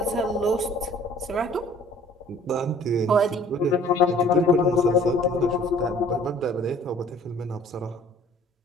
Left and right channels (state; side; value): normal; both; correlation 0.53